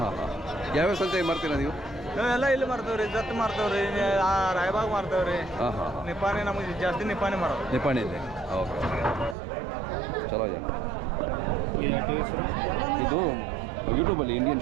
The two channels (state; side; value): drops out; left; at 9.3 s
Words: ಹಾಂ ಹಾಂ. ಯಾವ್ಯಾವ ಸಂತೆ ಮಾರ್ತೀರಾ ನೀವು? ನಾವೆಲ್ಲ ಇಲ್ಲಿ ಮಾಡ್ತೇವ್ರಿ, ಜತ್ ಮಾಡ್ತೇವ್ರಿ, ರಾಯಬಾಗ್ ಮಾಡ್ತೇವ್ರಿ. ಹಾಂ ಹಾಂ ಹಾಂ. ನಿಪ್ಪಾಣಿ ನಮಗೆ ಜಾಸ್ತಿ ನಿಪ್ಪಾಣಿ ಮಾಡೋದು. ನಿಪ್ಪಾಣಿ ಇದೆ. ಓಕೆ ಓಕೆ, ಚಲೋ ಇದೆ. ಇದು ಯೂಟ್ಯೂಬಲ್ಲಿ ಇಂಡಿಯನ್